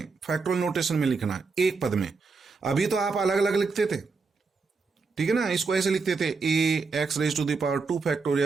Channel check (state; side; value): quieter; left; 4.5 dB